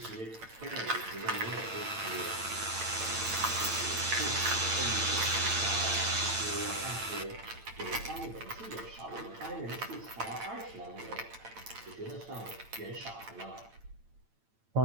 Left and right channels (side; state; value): left; late; 8.9 ms